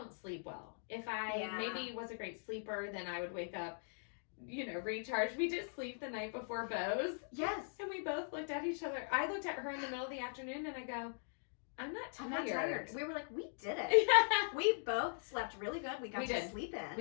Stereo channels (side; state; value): right; silent; digital silence